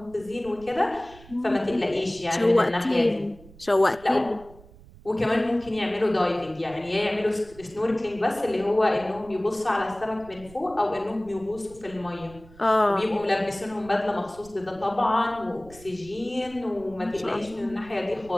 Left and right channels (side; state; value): right; noise; rumble, 21 dB below the sound